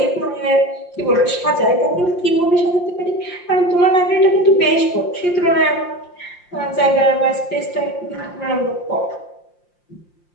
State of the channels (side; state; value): right; late; 5.7 ms